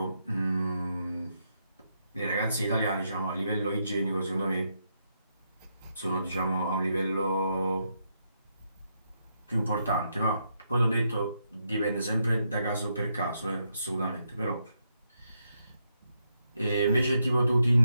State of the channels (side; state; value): both; inverted; correlation -0.80